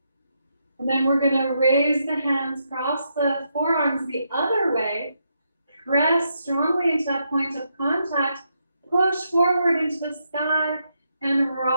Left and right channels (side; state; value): both; inverted; correlation -0.80